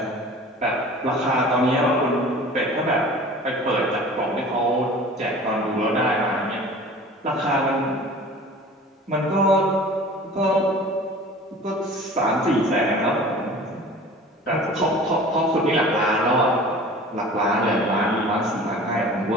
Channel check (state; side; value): normal; both; correlation 0.42